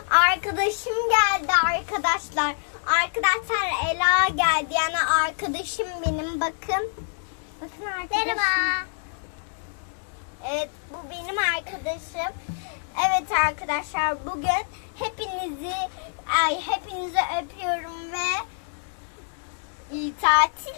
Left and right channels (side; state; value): right; silent; digital silence